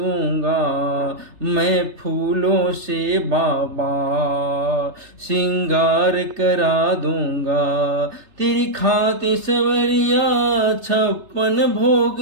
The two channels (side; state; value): left; late; 3.3 ms